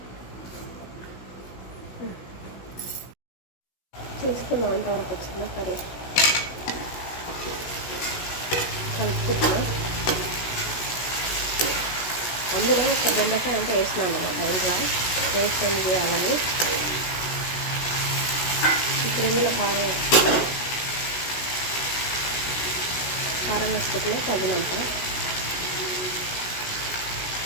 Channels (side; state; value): right; late; 16 ms